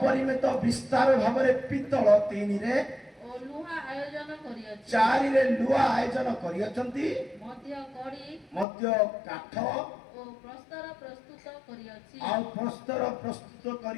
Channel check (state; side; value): drops out; right; at 8.7 s